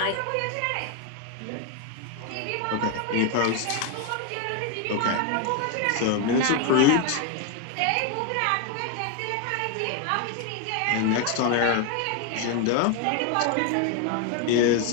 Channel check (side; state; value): both; different; correlation 0.01